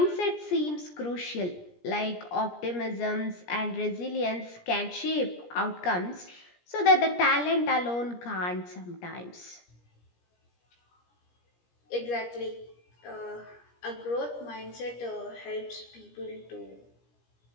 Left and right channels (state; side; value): late; right; 17 ms